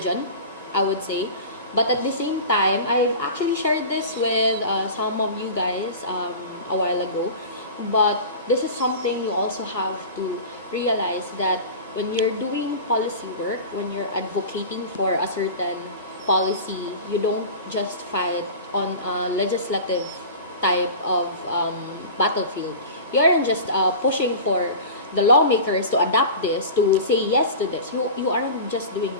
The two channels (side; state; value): both; inverted; correlation -0.34